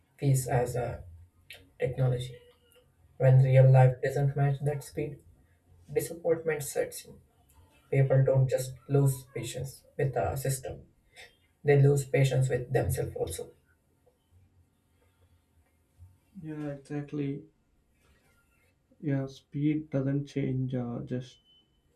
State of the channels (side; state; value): both; identical; correlation 1.00